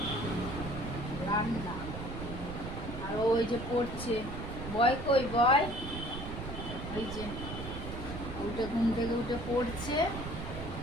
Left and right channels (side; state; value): right; noise; rumble, 7 dB below the sound